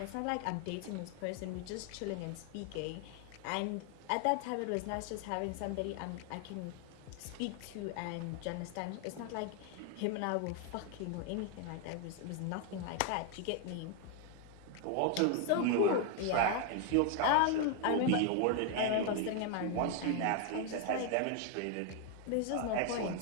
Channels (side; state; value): both; different; correlation 0.01